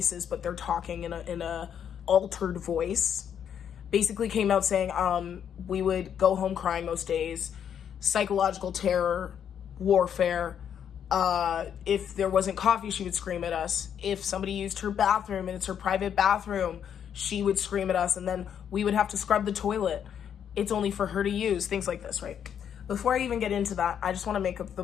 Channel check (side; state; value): right; quieter; 8.6 dB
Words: but they're talking in a altered voice. Basically came out saying, we would go home crying most days, psychological terror, warfare. If there wasn't coffee, she would scream at us. If somebody used her bathroom and it's her private bathroom, she would scream at us, and then we would have to scrub the toilet. It's only for her to use, things like this, right? Before I even get into that, I just want to make up the